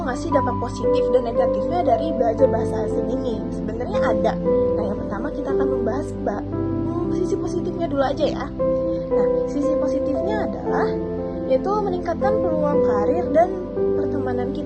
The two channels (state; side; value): identical; both; correlation 1.00